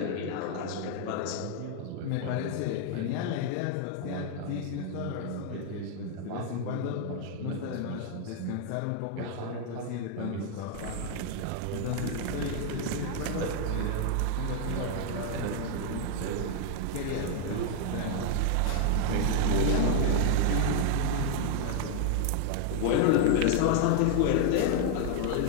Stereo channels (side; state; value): both; different; correlation 0.00